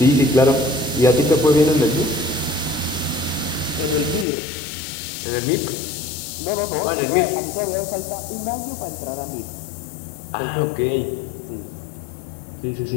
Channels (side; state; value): right; drops out; at 4.2 s